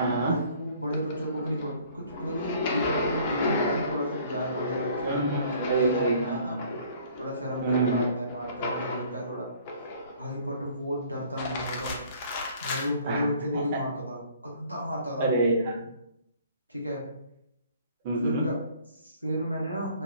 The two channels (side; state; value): both; inverted; correlation -0.55